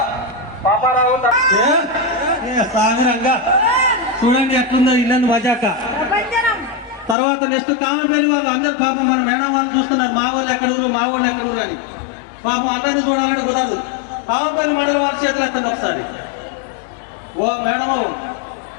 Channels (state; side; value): drops out; right; at 7.2 s